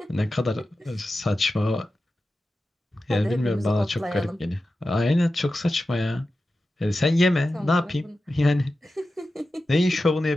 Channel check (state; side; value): normal; both; correlation 0.93